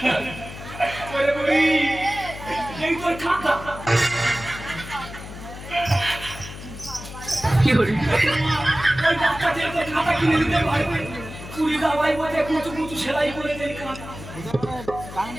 এই তোর খাতা ওই বাচ্চাদের তো খাতা কিনে দিতে পারবে কুড়ি দাবাই বসে কুচু কুচু সেলাই করে দেয় খাতা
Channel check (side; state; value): left; noise; hum, 12 dB below the sound